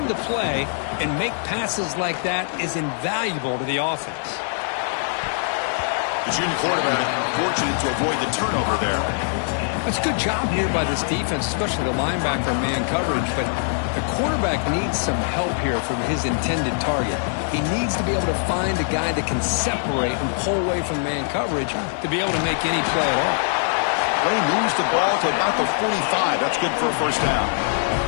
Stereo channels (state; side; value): silent; right; 64 dB below the other